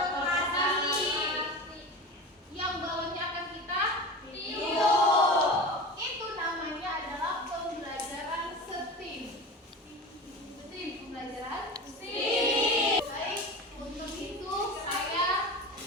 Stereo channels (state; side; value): normal; both; correlation 0.30